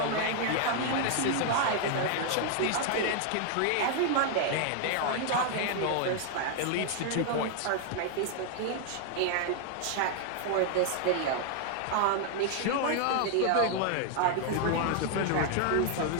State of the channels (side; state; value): both; different; correlation 0.00